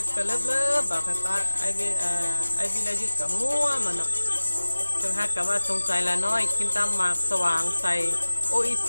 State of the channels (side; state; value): both; inverted; correlation -1.00